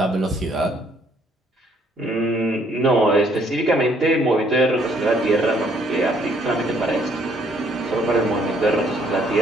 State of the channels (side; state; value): both; normal; correlation 0.66